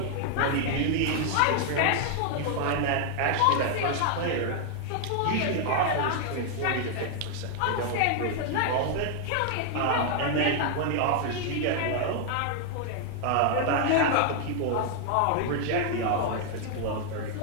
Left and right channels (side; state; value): both; different; correlation 0.00